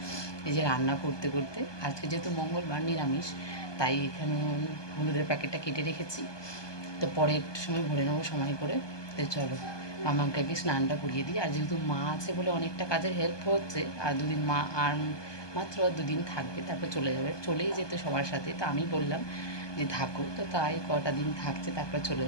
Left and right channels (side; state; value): right; late; 1.2 ms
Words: এই যে রান্না করতে করতে, আজকে যেহেতু মঙ্গলবার নিরামিষ, তাই এখানে আমি হলুদের প্যাকেটটা কেটে রেখেছি। তো পরে একটু সময় ভরে নেবো সময় করে। তো চলো মামাকে আগে স্নানটা করিয়ে দিই। আর যেহেতু মা আছে বলে অনেকটা কাজের হেল্প হচ্ছে। আর দুদিন মা আর মাত্র 2 দিন থাকবে, তারপর চলে যাবে, চলেই যেত সবার সাথে। তো আমি বললাম যে থাকো, তো তাই কটা দিন থাকছে, তারপর চলে